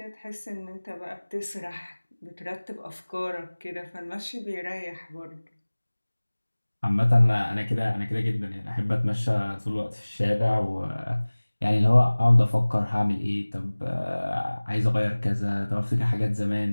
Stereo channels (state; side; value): inverted; both; correlation -1.00